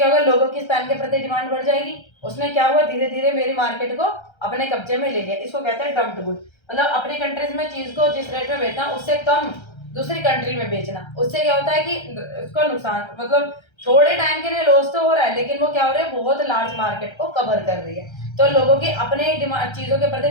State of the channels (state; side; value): late; right; 1.3 ms